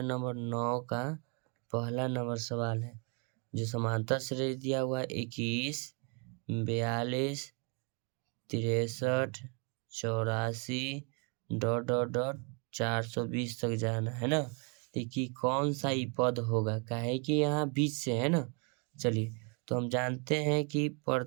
नंबर 9 का पहला नंबर सवाल है, जो समांतर श्रेणी दिया हुआ है 21, 42, 63, 84 डॉट डॉट डॉट 420 तक जाना है ना। देखिए कौन सा ही पद होगा, काहे कि यहाँ बीच से है ना। चलिए तो हम जानते हैं कि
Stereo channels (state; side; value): quieter; left; 35.5 dB